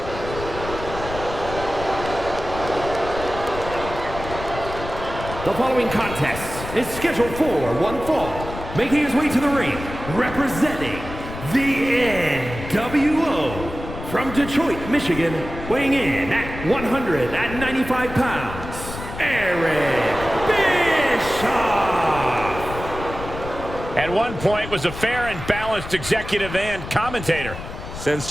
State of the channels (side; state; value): left; noise; rumble, 10 dB below the sound